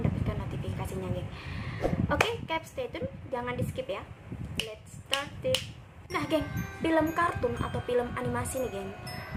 notifikasinya, geng. Oke, stay tune, jangan di skip ya. Let's start it. Nah, geng, film kartun atau film animasi nih, geng,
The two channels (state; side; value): identical; both; correlation 1.00